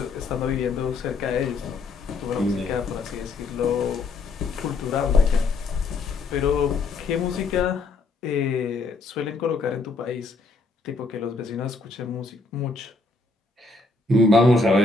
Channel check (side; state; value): right; quieter; 3.8 dB